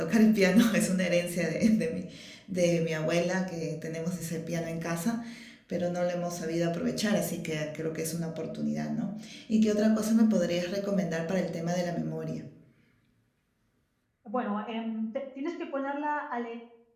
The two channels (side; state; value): both; identical; correlation 1.00